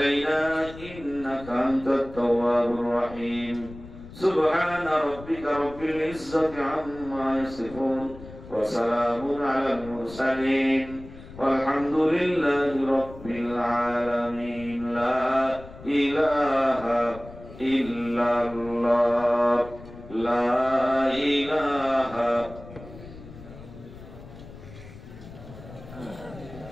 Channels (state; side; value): noise; left; rumble, 16 dB below the sound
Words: إنك أنت التواب الرحيم سبحان ربك رب العزة عما يصفون وسلام على المرسلين والحمد لله رب العالمين لا إله إلا الله لا إله